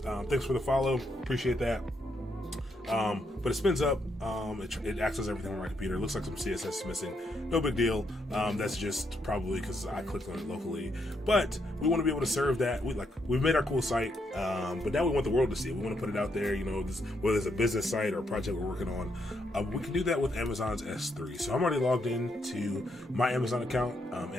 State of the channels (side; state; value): both; normal; correlation 0.78